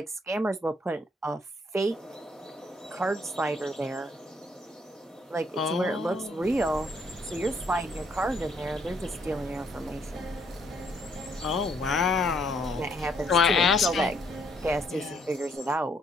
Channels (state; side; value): normal; both; correlation 0.69